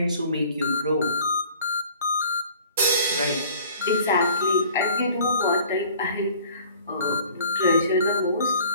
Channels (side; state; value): both; inverted; correlation -0.50